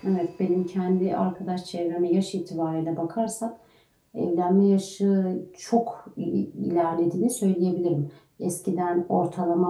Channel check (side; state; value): both; identical; correlation 1.00